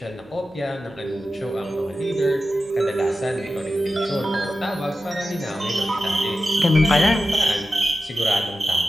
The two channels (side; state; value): both; normal; correlation 0.93